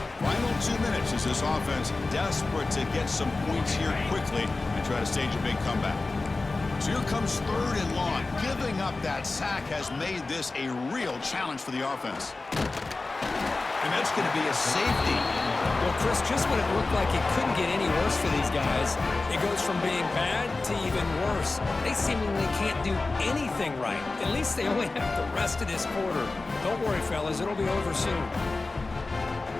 Final 2 minutes as this offense desperate to get some points here quickly and try to stage a big comeback. So here comes 3rd and long. Giving up that sack has made this a real challenge for the offense. And that's going to be a safety. Well, Chris, just when it looked like it couldn't get any worse for these guys, it goes from being bad to even worse. They seemingly can't do anything right. At least they only have the rest of this quarter. Don't worry, fellas. It'll be over soon.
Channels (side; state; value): right; quieter; 3.5 dB